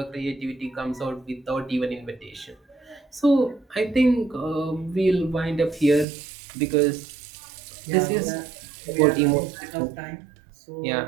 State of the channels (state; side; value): drops out; left; at 6.1 s